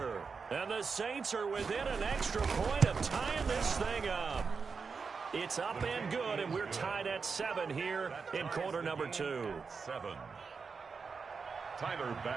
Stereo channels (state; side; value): quieter; left; 5.2 dB